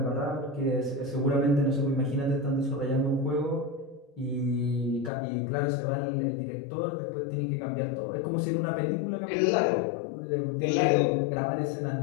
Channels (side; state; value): right; drops out; at 5.1 s